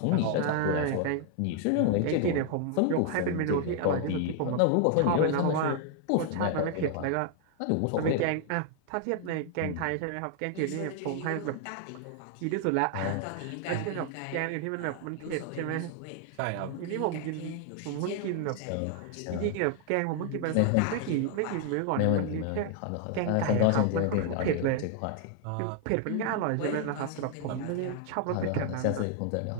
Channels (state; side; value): different; both; correlation 0.00